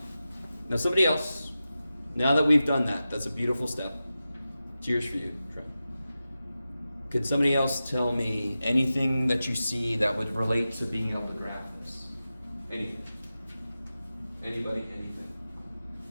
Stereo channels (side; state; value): both; inverted; correlation -0.93